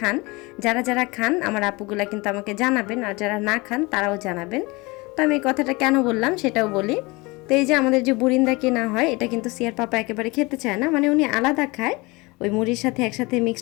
যারা যারা খান আমার আপুগুলা কিন্তু আমাকে জানাবেন, আর যারা না খান তারাও জানাবেন। তো আমি এই কথাটা কেন বললাম সেটাও বলি। তো এই যে আমাদের যে বুরিন্দা কেনা হয়, এটা কিন্তু সিয়ার পাপা একেবারে খেতে চায় না, মানে উনি আলাদা খায়, ওই মুড়ির সাথে একসাথে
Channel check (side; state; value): right; quieter; 24.6 dB